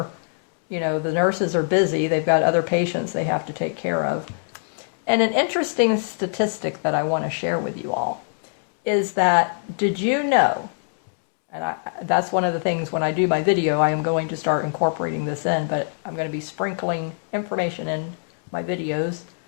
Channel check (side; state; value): right; silent; digital silence